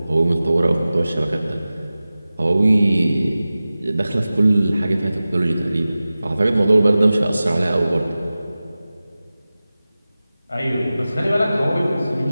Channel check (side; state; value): both; inverted; correlation -0.96